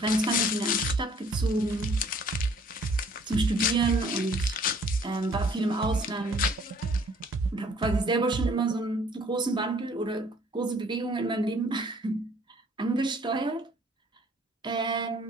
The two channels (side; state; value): both; normal; correlation 0.58